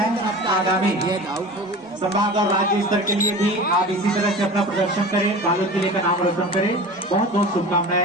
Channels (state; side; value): normal; both; correlation 0.35